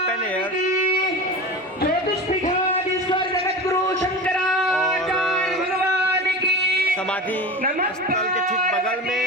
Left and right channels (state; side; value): normal; both; correlation 0.29